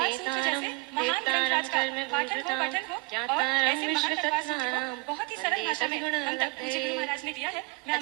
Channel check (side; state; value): left; quieter; 27.9 dB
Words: सूत्र जैसे महान ग्रंथ का पाठन हो, पठन हो और ऐसे महान तत्वाद सूत्र को बहुत ही सरल भाषा में हम तक पूज्य गुरु महाराज ने दिया है। मैं